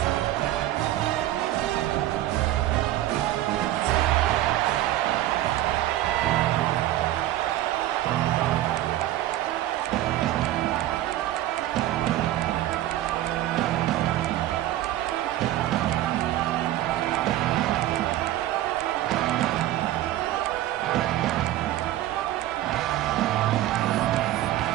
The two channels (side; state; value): left; quieter; 14.2 dB